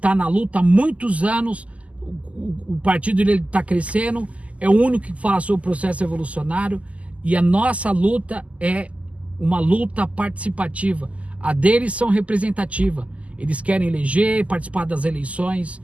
na luta há muitos anos. O partido dele está crescendo. É o único que fala sobre o processo evolucionário. E a nossa luta é uma luta participativa. A deles são representativa. Eles querem eleger, participar das eleições.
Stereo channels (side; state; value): left; late; 0.067 ms